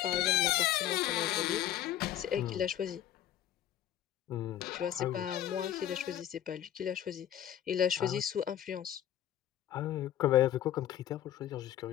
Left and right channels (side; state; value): right; quieter; 11.4 dB